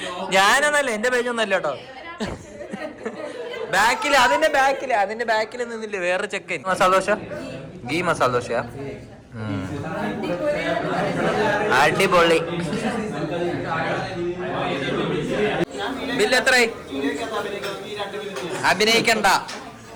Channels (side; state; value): both; identical; correlation 1.00